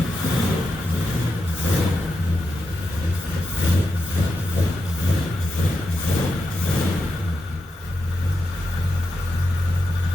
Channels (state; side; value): normal; both; correlation 0.88